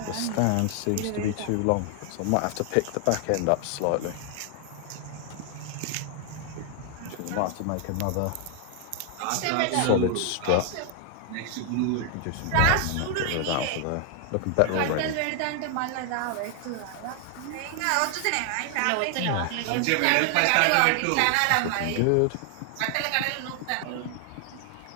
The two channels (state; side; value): different; both; correlation 0.00